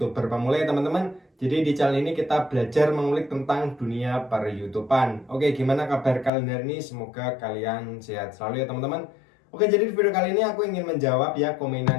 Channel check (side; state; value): right; drops out; at 6.3 s